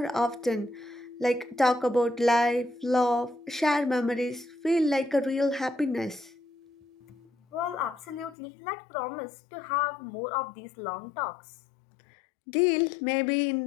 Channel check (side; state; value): right; drops out; at 8.3 s